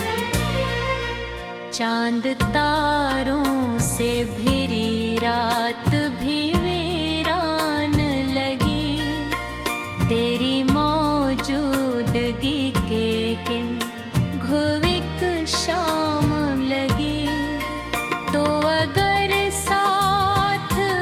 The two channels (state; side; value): identical; both; correlation 1.00